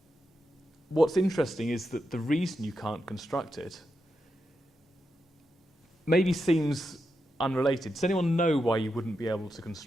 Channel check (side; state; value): both; normal; correlation 0.86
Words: What's interesting is that the reason you can't construct it maybe seems unrelated. Does anyone know why you wouldn't be able to